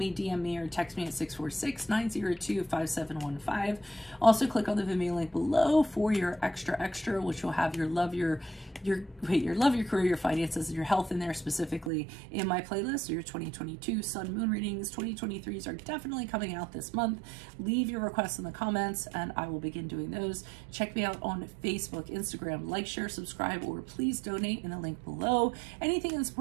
DM me, or text me at 646-902-5715. Also, click on the Vimeo link below for your extra, which will have your love your career, your finances, and your health in there specifically in my playlist. So your 2022 Sun Moon readings, 2023s are definitely coming out this month. Leave your requests in the comments and I will begin doing those. Check me out on Facebook, Instagram, like, share, subscribe, or please donate in the link below. Anything in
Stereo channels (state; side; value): drops out; left; at 11.9 s